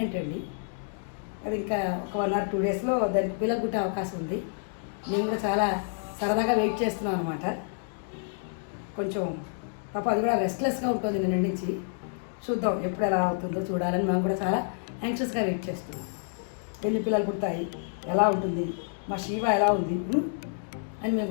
అండి. అది ఇంకా ఒక 1 or 2 డేస్లో దానికి పిల్లలు పుట్టే అవకాశం ఉంది. మేము కూడా చాలా సరదాగా వెయిట్ చేస్తున్నాం అనమాట. కొంచెం పాప అది కూడా రెస్ట్లెస్గా ఉంటుంది నిన్న నుంచి. చూద్దాం ఎప్పుడు ఎలా అవుతుందో చూడాలని మేము కూడా చాలా యాంగ్షియస్గా వెయిట్ చేస్తున్నాం. ఎన్ని పిల్లలు పుడతాయి, ఎలా ఉంటుంది, మా శివ ఎలా ఉంది అని మేము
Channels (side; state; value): right; silent; digital silence